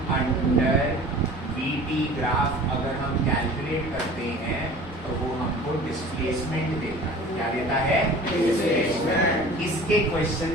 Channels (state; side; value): normal; both; correlation 0.43